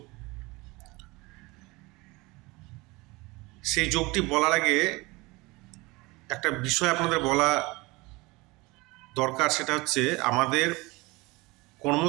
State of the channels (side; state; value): left; quieter; 23.4 dB